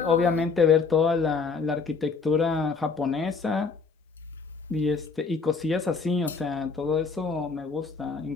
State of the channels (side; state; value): right; quieter; 4.8 dB